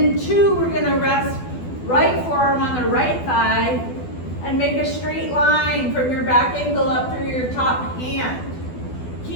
two, we're going to rest right forearm on the right thigh and make a straight line from your back ankle up through your top hand.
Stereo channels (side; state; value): right; late; 12 ms